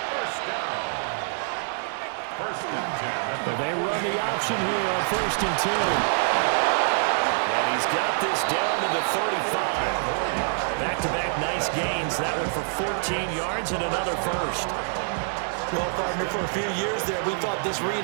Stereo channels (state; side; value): silent; left; digital silence